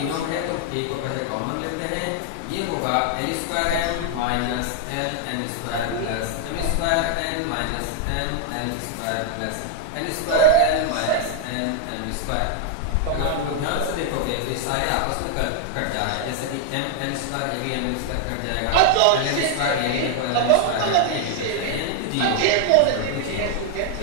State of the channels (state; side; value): different; both; correlation 0.00